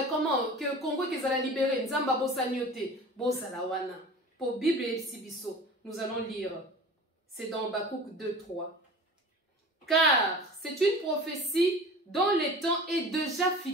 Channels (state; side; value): normal; both; correlation 0.39